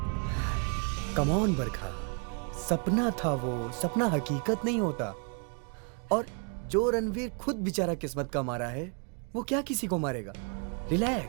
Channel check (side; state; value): left; quieter; 38.6 dB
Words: कम ऑन बरखा, सपना था वो, सपना हकीकत नहीं होता। और जो रणवीर खुद बेचारा किस्मत का मारा है, वो क्या किसी को मारेगा?